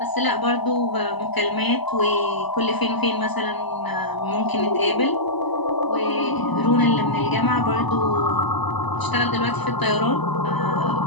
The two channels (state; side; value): late; right; 1.0 ms